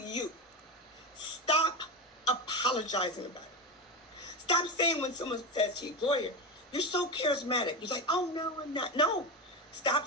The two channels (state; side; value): normal; both; correlation 0.19